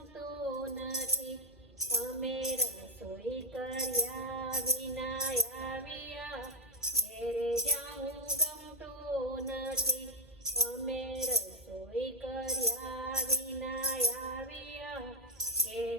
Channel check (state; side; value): normal; both; correlation 0.02